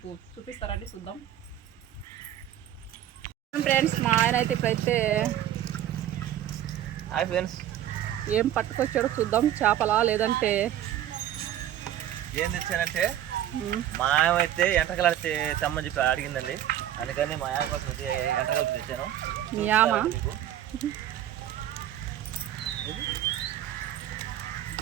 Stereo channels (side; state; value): left; quieter; 11.8 dB